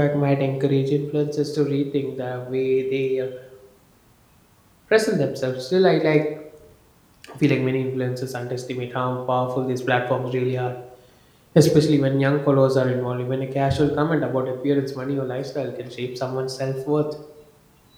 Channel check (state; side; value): identical; both; correlation 1.00